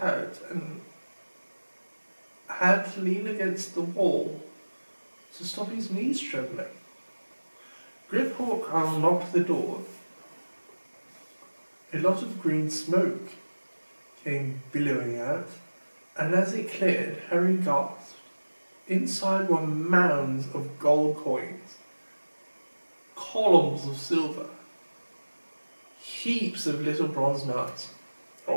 out and had to lean against the wall to stop his knees trembling. Grip-Hawk unlocked the door. A lot of green smoke came billowing out, and as it cleared, Harry gasped. Inside were mounds of gold coins, columns of silver, heaps of little bronze nuts.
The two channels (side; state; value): both; inverted; correlation -1.00